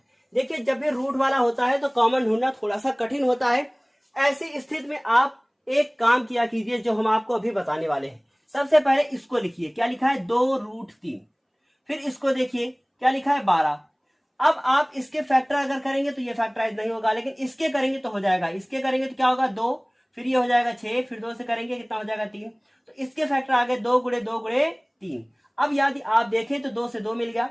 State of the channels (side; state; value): both; identical; correlation 1.00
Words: देखिए जब भी रूट वाला होता है तो कॉमन ढूंढना थोड़ा सा कठिन होता है। ऐसी स्थिति में आप एक काम किया कीजिए जो हम आपको अभी बताने वाले हैं। सबसे पहले इसको लिखिए, क्या लिखा है 2 रूट 3, फिर इसको देखिए क्या लिखा है 12। अब आप इसके फैक्टर अगर करेंगे तो ये फैक्टराइज नहीं होगा, लेकिन इसके करेंगे तो हो जाएगा। इसके करेंगे तो क्या होगा 2, फिर ये हो जाएगा 6, फिर 2 से करेंगे कितना हो जाएगा 3, तो इसके फैक्टर आ गए 2 गुणे 2 गुणे 3। अब यदि आप देखें तो 2 से 2 मिल